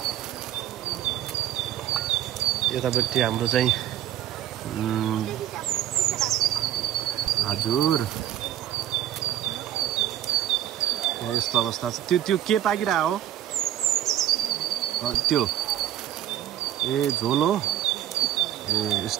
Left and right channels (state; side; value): quieter; left; 11.9 dB